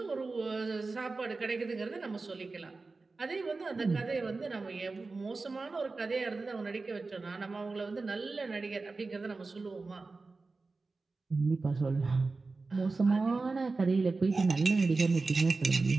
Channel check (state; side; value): quieter; left; 3.8 dB